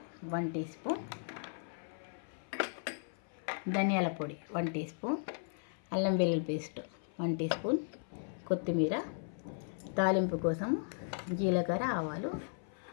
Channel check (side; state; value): right; silent; 54 dB below the other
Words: 1 teaspoon. ధనియాల పొడి 1 టీ స్పూన్. అల్లం వెల్లుల్లి పేస్ట్ 1 టీ స్పూన్. కొత్తిమీర, తాలింపు కోసం జీలకర్ర, ఆవాలు,